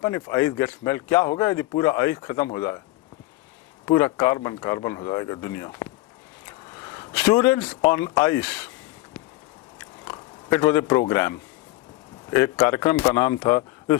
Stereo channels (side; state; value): right; quieter; 18.7 dB